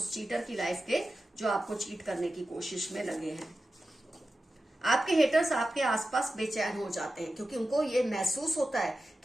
चीटर की लाइफ के जो आपको चीट करने की कोशिश में लगे हैं। आपके हेटर्स आपके आसपास बेचैन हो जाते हैं, क्योंकि उनको ये महसूस होता है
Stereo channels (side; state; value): both; normal; correlation 0.93